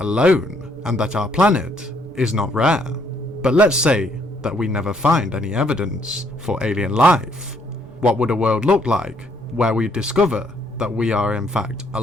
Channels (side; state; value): both; normal; correlation 0.68